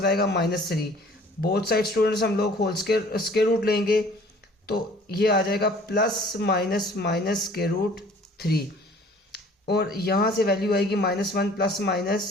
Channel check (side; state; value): both; normal; correlation 0.52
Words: आएगा -3। बोथ साइड स्टूडेंट्स हम लोग होल स्केयर रूट लेंगे तो ये आ जाएगा plus minus minus square root 3। और यहाँ से वैल्यू आएगी -1 plus